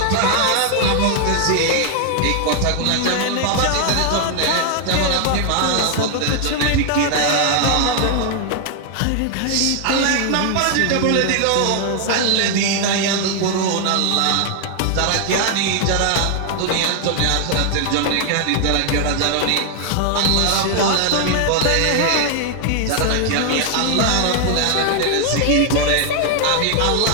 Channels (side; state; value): both; different; correlation 0.00